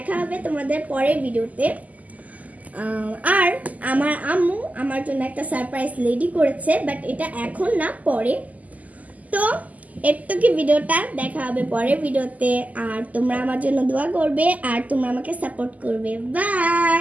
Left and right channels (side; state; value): left; late; 0.076 ms